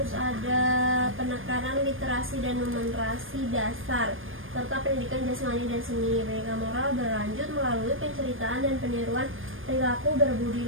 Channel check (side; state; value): left; late; 0.59 ms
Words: ada penekanan literasi dan numerasi dasar serta pendidikan jasmani dan seni. Pendidikan moral berlanjut melalui penceritaan dan peniruan perilaku